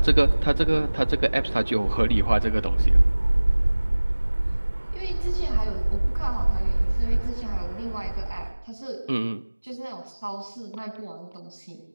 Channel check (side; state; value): both; inverted; correlation -1.00